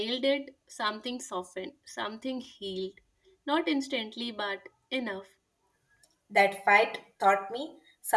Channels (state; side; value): identical; both; correlation 1.00